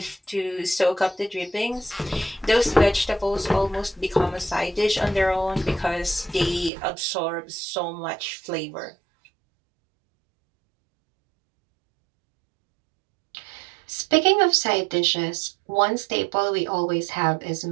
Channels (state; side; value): drops out; left; at 6.7 s